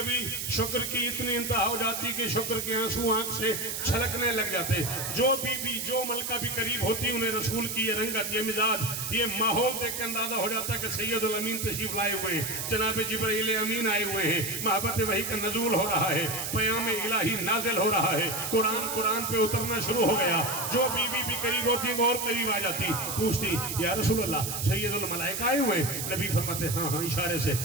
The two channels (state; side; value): noise; right; hiss, 4 dB below the sound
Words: शुक्र की इतनी इंतहा हो जाती कि शुक्र के आंसू आंख से छलकने लग जाते। जो बीबी जो मलका भी करीब होती उन्हें रसूल की ये रंगत, ये मिजाज, ये माहौल देख के अंदाजा हो जाता कि सैयदुल अमीन तशरीफ लाए हुए हैं, जनाब जिब्राइल अमीन आए हुए हैं, मोहब्बत वही का नजूल हो रहा है, पयाम इलाही नाजिल हो रहा है, कुरान पे उतरना शुरू हो गया। जो बीबी भी करीब होती वो और करीब आ जाती, पूछती या रसूलल्लाह सैयदुल मलाइका आए हुए हैं? नबी फरमाते हाँ हाँ, इशारे से